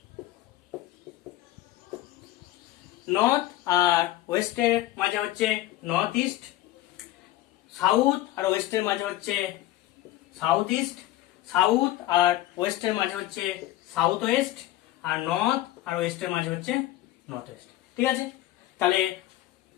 নর্থ আর ওয়েস্টের মাঝে হচ্ছে নর্থ ইস্ট, সাউথ আর ওয়েস্টের মাঝে হচ্ছে সাউথ ইস্ট, সাউথ আর ওয়েস্টের মাঝে হচ্ছে সাউথ ওয়েস্ট, আর নর্থ আর ওয়েস্টের মাঝে হচ্ছে নর্থ ওয়েস্ট, ঠিক আছে? তাহলে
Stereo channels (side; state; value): right; quieter; 15.3 dB